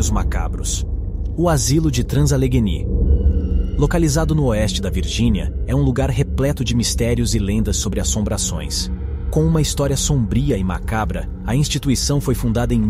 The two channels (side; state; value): both; identical; correlation 1.00